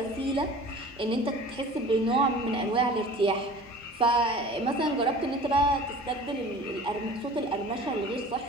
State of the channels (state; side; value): normal; both; correlation 0.43